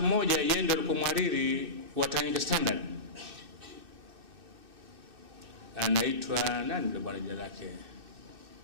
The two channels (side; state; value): left; late; 2.6 ms